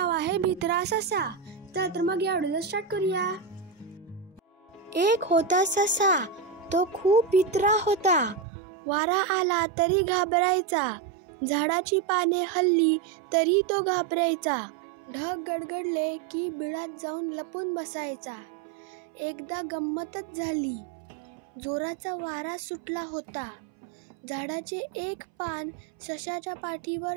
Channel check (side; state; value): left; drops out; at 8.5 s